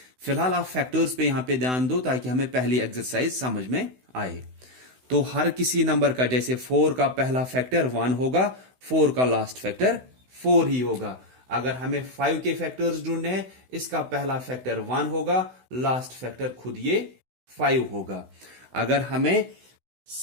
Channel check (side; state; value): left; late; 16 ms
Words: फिलहाल आप फैक्टर्स पे यहां पे ध्यान दो ताकि हमें पहली एक्सरसाइज समझ में आए। तो हर किसी नंबर का, जैसे 4 का पहला फैक्टर 1 होगा, 4 का लास्ट फैक्टर 4 ही होगा। अगर हमें 5 के फैक्टर्स ढूंढने हैं, इसका पहला फैक्टर 1 होगा, लास्ट फैक्टर खुद ये 5 होगा। अगर हमें